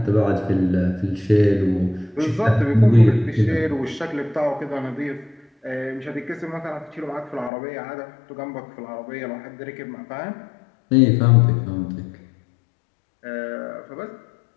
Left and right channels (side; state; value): right; drops out; at 7.5 s